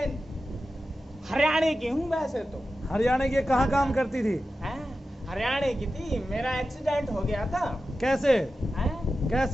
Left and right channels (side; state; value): both; normal; correlation 0.93